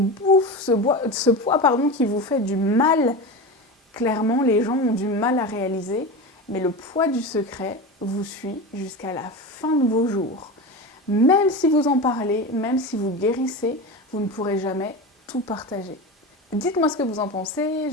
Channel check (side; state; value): both; normal; correlation 0.25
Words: ce poids qui vous fait du mal. Clairement, les gens ont du mal à réaliser, mais le poids du secret vous suit jusqu'à la fin de vos jours. Même si vous en parlez, même si vous guérissez, vous ne pourrez jamais tout partager. Dites-moi ce que vous en pensez,